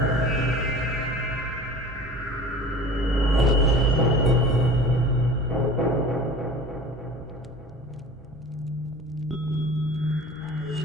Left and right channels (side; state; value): both; normal; correlation 0.40